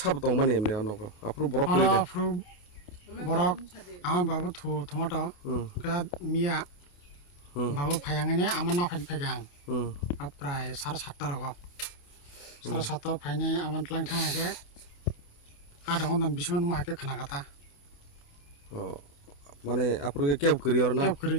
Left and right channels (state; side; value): late; right; 28 ms